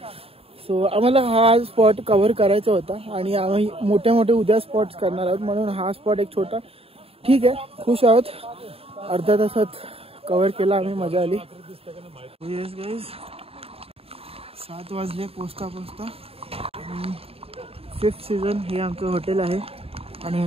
सो आम्हाला हा स्पॉट कव्हर करायचा होता आणि आम्ही मोठे मोठे उद्या स्पॉट्स करणार आहोत, म्हणून हा स्पॉट एक छोटा ठीक आहे. खुश आहोत, अर्ध्या तासात कव्हर केला आम्ही, मजा आली. येस गाईज 7 वाजले पोचता. 5th सीझन हे आमचं हॉटेल आहे आणि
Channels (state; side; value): late; left; 0.28 ms